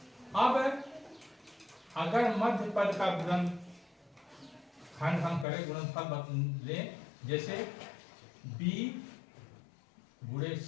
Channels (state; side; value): drops out; right; at 5.5 s